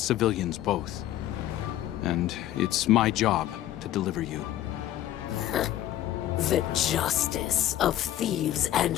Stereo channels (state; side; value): quieter; right; 13.1 dB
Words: both. And it's my job to deliver you. The justice of thieves and